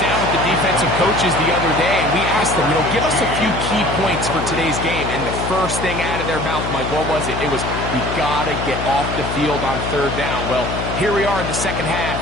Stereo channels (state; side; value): noise; left; hum, 5 dB below the sound